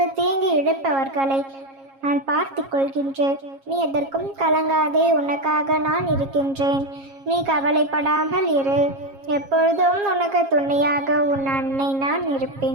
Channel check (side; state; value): left; late; 7.4 ms